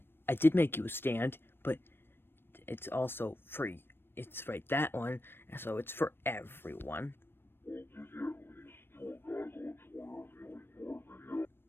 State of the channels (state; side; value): late; right; 0.10 ms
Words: I did make you a stand, but it's also free. It's right, that one, and so it's for everyone.